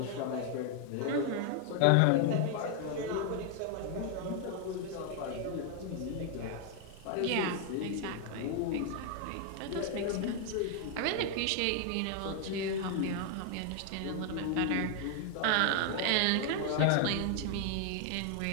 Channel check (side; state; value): both; different; correlation 0.00